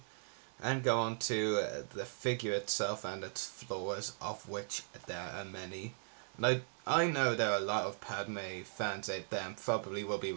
and go on to the figure itself and its flaws, of which there are many. And I know there are a lot of Padme fans out there and probably will be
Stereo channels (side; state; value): left; silent; digital silence